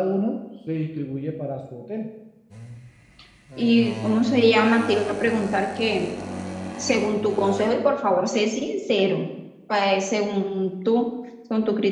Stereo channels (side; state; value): both; identical; correlation 1.00